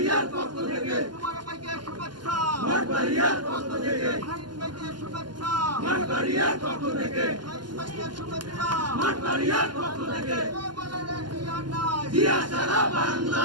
পক্ষ থেকে কুমার ভাইকে শুভেচ্ছা, মঠবাড়িয়ার পক্ষ থেকে শাহীন ভাইকে শুভেচ্ছা, মঠবাড়িয়ার পক্ষ থেকে শাহীন ভাইকে শুভেচ্ছা। মঠবাড়িয়ার পক্ষ থেকে বলে রে জিয়া নাই, জিয়া সারা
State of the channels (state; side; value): late; left; 0.71 ms